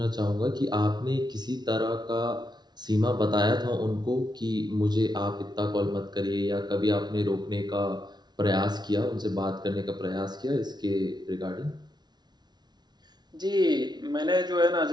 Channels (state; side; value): late; left; 0.20 ms